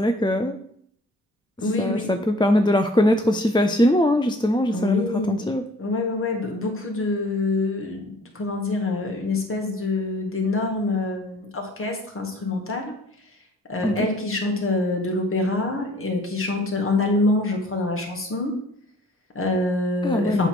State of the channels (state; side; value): normal; both; correlation 0.55